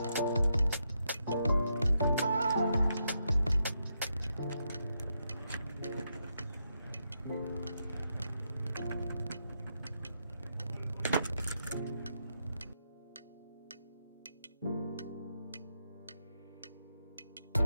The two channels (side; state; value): both; inverted; correlation -0.82